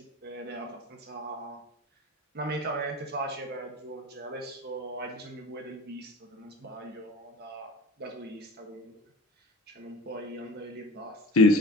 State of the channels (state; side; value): normal; both; correlation 0.36